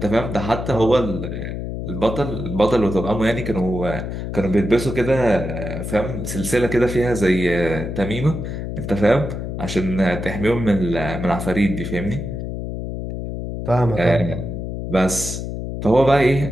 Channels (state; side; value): noise; left; hum, 5 dB below the sound